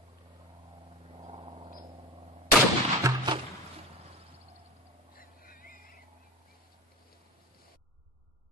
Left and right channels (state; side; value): normal; both; correlation 0.30